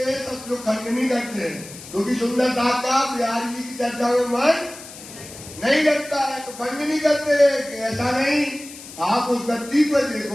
हैं? सब लोग खंडनी करते हैं, क्योंकि सुंदरता का बिहारी जी की चर्चा में मन नहीं लगता है, तो खंडनी करते हैं कि ऐसा नहीं। आप उस गद्दी पर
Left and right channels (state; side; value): noise; left; hiss, 15 dB below the sound